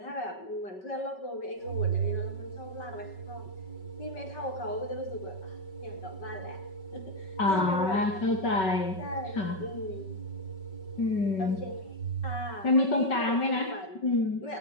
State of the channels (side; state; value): right; late; 5.3 ms